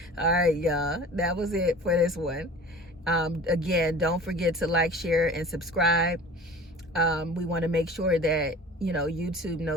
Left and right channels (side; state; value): both; normal; correlation 0.41